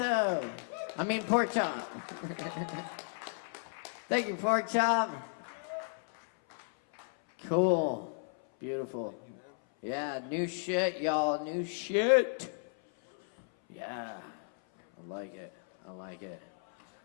I mean Pork Chop. Thank you, Pork Chop. Cool. Beautiful. Yeah, new shit, y'all. New shit. Yeah. I like it. I like it.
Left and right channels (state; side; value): silent; right; 55 dB below the other